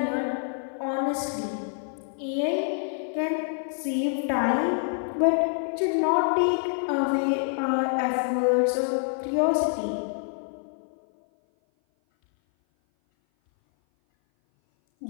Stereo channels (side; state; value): right; silent; 57 dB below the other